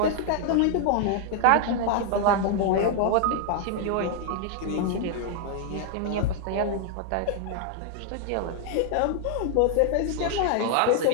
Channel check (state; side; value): different; both; correlation 0.00